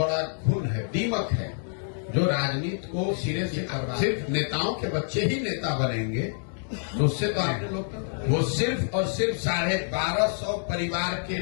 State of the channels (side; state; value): right; silent; digital silence